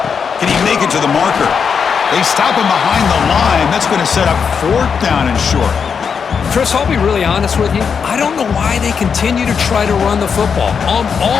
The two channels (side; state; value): right; quieter; 6.4 dB